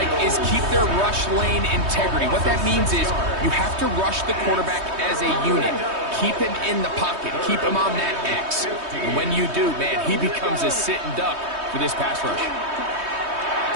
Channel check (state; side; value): late; left; 3.2 ms